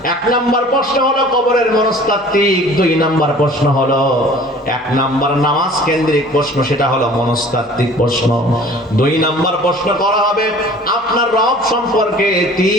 1 নাম্বার প্রশ্ন হলো কবরের মনস্তাত্ত্বিক, 2 নাম্বার প্রশ্ন হলো 1 নাম্বার নামাজ কেন্দ্রিক প্রশ্ন, সেটা হলো মনস্তাত্ত্বিক প্রশ্ন। 2 নাম্বার প্রশ্ন করা হবে আপনার রব সম্পর্কে,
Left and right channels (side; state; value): both; normal; correlation 0.47